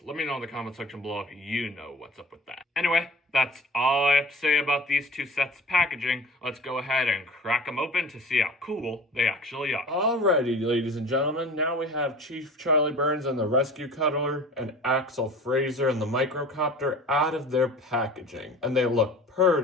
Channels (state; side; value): normal; both; correlation 0.41